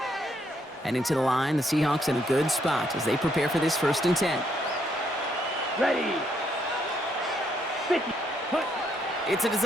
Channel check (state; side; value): normal; both; correlation 0.73